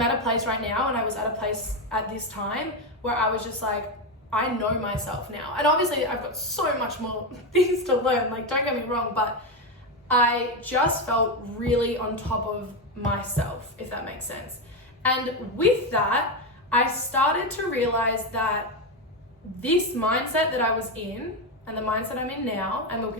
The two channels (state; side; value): normal; both; correlation 0.11